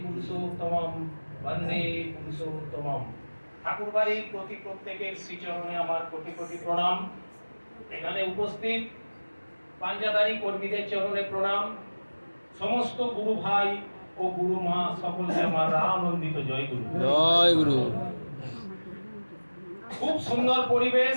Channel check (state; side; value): inverted; both; correlation -1.00